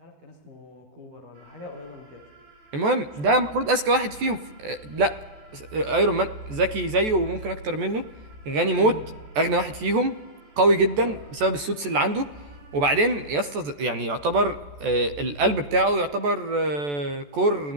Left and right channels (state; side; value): late; left; 14 ms